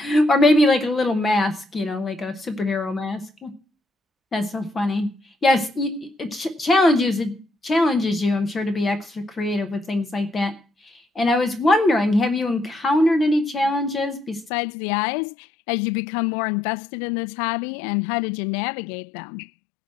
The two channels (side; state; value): right; drops out; at 14.5 s